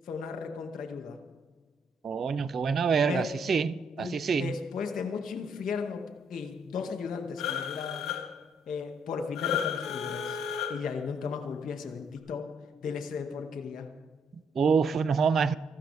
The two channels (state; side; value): normal; both; correlation 0.71